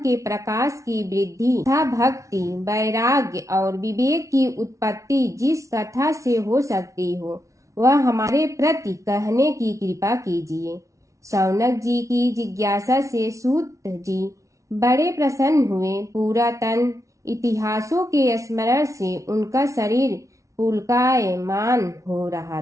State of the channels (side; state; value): left; late; 0.15 ms